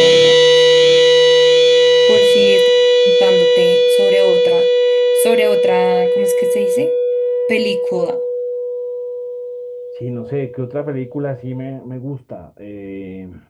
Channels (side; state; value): both; identical; correlation 1.00